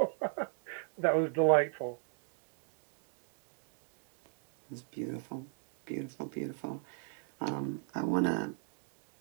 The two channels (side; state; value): left; silent; 53 dB below the other